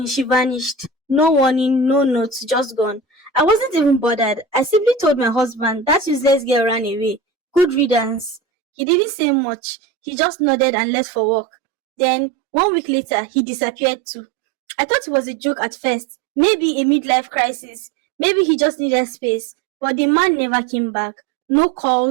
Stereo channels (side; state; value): left; drops out; at 8.4 s